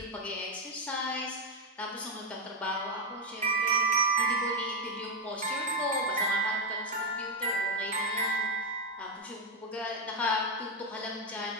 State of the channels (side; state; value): both; normal; correlation 0.06